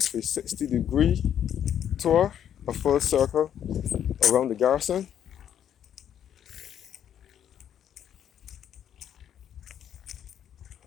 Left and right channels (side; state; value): right; quieter; 9.7 dB